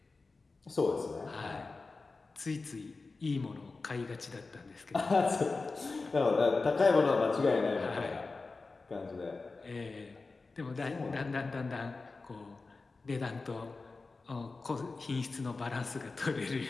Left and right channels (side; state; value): right; quieter; 3.9 dB